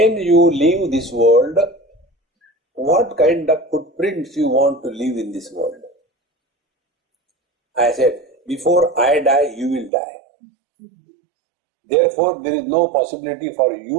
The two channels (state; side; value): drops out; left; at 9.9 s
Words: you leave this world, what kind of footprints you want to leave in this world? I said, before I die, you will die. Therefore, there is no possibility for